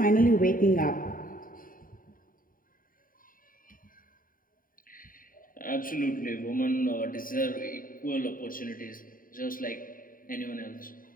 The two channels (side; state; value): right; late; 0.41 ms